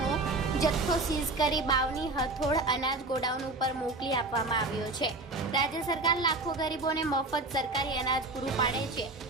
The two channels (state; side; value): quieter; left; 3.1 dB